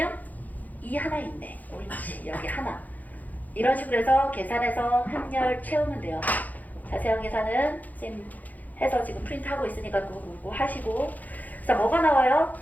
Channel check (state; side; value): late; right; 0.081 ms